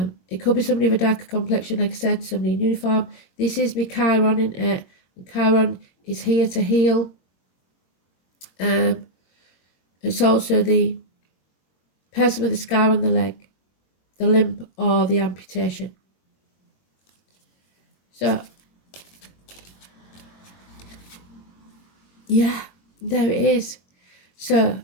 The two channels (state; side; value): late; right; 22 ms